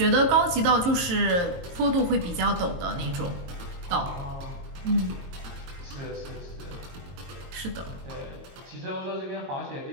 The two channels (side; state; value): left; late; 22 ms